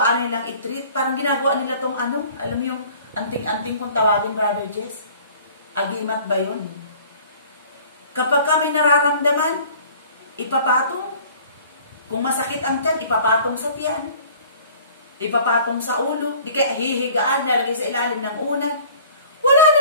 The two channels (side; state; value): both; inverted; correlation -0.50